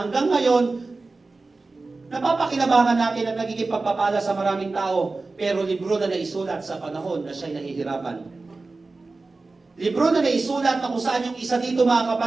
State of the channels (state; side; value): quieter; left; 3.6 dB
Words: ngayon, napapakinabangan natin at nagiging pagpapala sa maraming tao. Pero libro na naisulat sa panahon na siya'y nahihirapan. Libro na naisulat na kung saan yung isa dito, mga